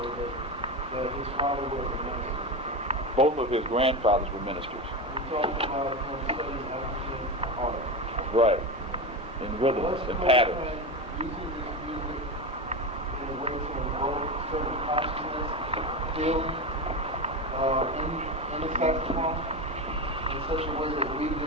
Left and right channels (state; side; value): normal; both; correlation 0.19